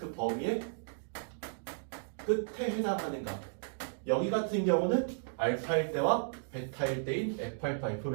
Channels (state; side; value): silent; left; digital silence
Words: 범위의 끝에 해당하는 값. 여기 같은 경우는 알파일 때와 베타일 때인 f알파,